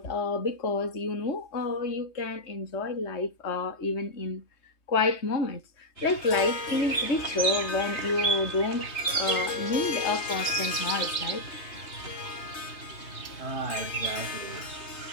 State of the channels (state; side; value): late; right; 3.2 ms